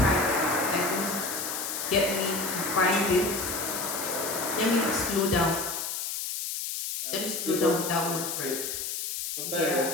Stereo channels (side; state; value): left; noise; hiss, 4 dB below the sound